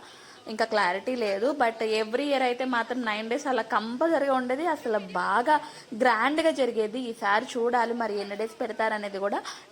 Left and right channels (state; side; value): identical; both; correlation 1.00